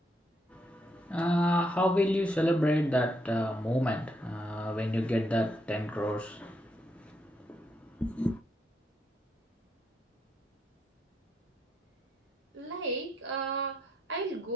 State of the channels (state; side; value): normal; both; correlation 0.77